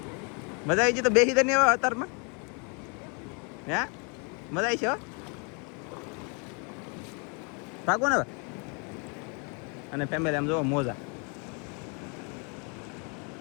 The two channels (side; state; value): right; quieter; 35.3 dB